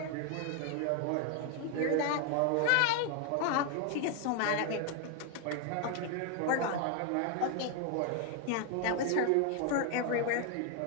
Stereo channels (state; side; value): different; both; correlation 0.00